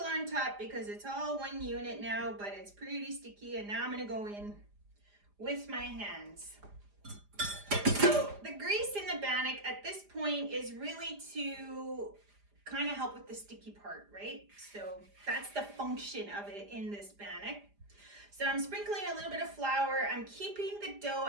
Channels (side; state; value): left; late; 4.9 ms